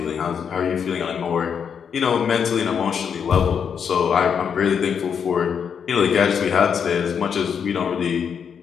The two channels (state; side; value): quieter; right; 7.2 dB